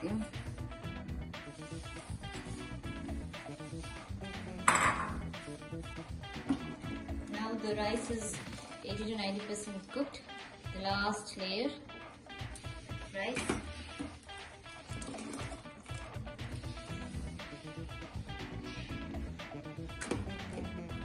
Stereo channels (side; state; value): both; identical; correlation 1.00